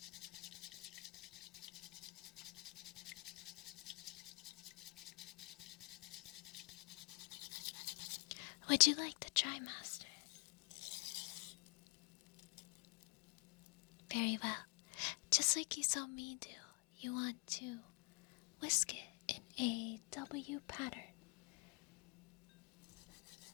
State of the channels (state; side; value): quieter; right; 31.1 dB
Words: Would you like to try, Master? Very well. Just like you saw me do, you want to whisk it in a W pattern.